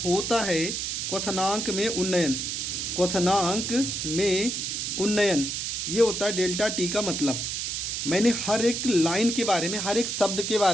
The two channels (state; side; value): noise; right; hiss, 2 dB below the sound